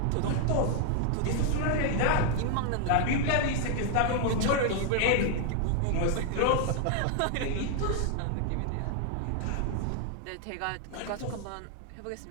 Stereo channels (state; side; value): different; both; correlation 0.00